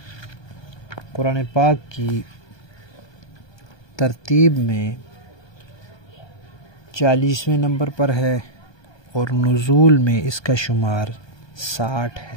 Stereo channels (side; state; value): right; late; 1.2 ms